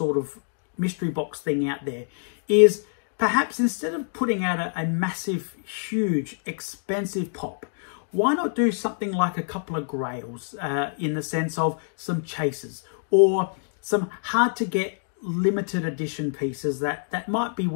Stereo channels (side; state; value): right; silent; digital silence